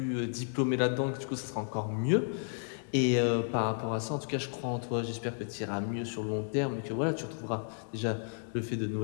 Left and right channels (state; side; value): silent; right; digital silence